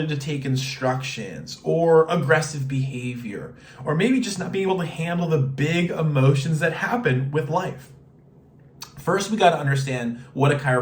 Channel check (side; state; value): both; identical; correlation 1.00